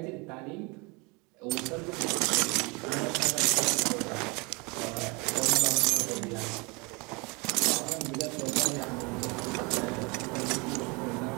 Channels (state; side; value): quieter; left; 28.4 dB